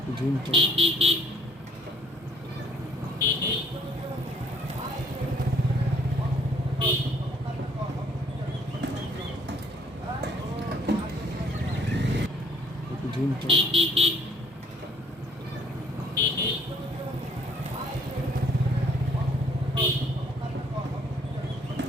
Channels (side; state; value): both; normal; correlation 0.61